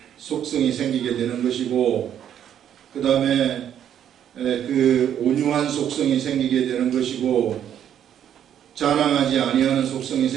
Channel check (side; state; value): left; quieter; 9.8 dB